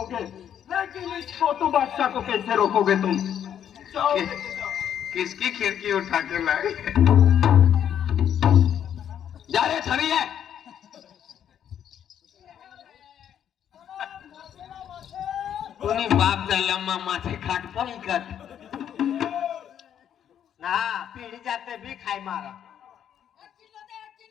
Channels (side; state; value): right; quieter; 9.5 dB